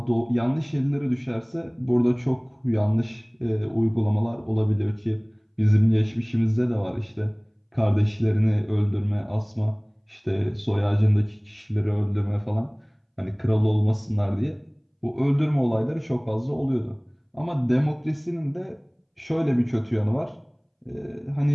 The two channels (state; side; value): identical; both; correlation 1.00